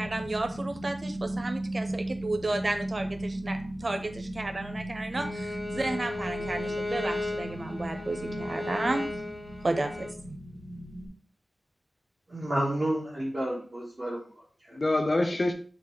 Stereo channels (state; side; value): normal; both; correlation 0.95